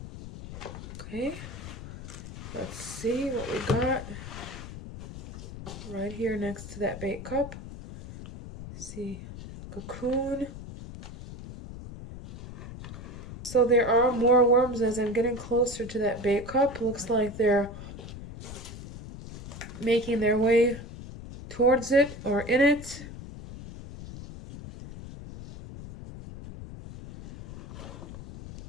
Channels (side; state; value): left; noise; rumble, 12 dB below the sound